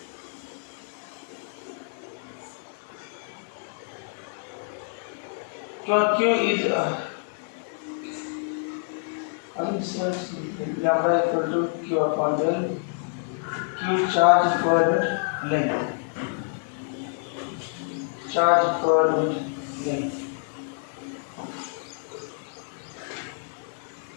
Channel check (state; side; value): silent; right; 60 dB below the other